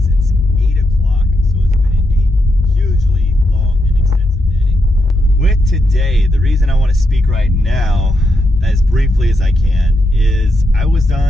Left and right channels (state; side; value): normal; both; correlation 0.82